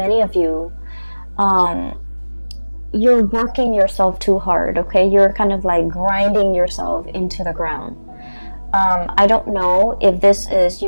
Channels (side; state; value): both; inverted; correlation -1.00